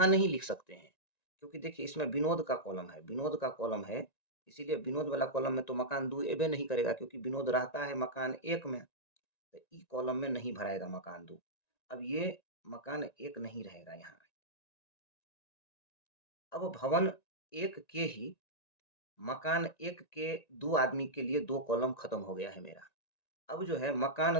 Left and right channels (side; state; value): right; late; 1.9 ms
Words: नहीं लिख सकते हैं, क्योंकि देखिए इसमें विनोद का कॉलम है, विनोद का कॉलम है, इसीलिए विनोद वाला कॉलम में तो मकान 2 एबे नहीं करेगा, क्योंकि विनोद रहता है मकान 1 में, तो ई कॉलम में नहीं भराएगा मकान 2। अब ये मकान 1 नहीं रहेगा यहाँ। अब भवन 1 के ही मकान 1 के 2 आदमी के लिए 2 कॉलम खत्म हो गया है मेरा। अब जो है